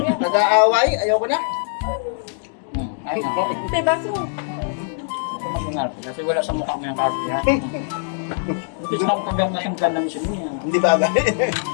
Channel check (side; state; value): right; silent; digital silence